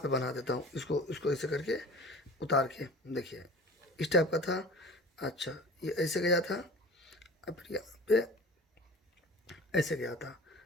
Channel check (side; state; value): both; normal; correlation 0.40